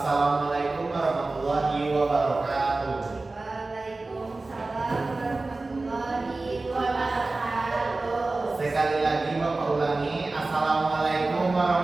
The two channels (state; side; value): quieter; left; 3.3 dB